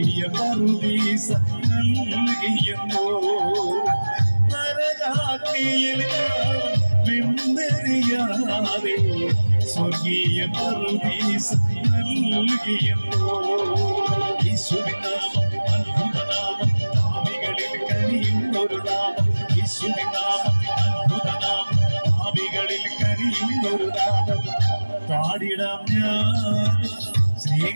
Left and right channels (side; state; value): both; inverted; correlation -1.00